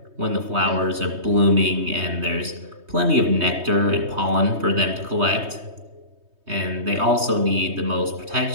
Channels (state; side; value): late; left; 3.2 ms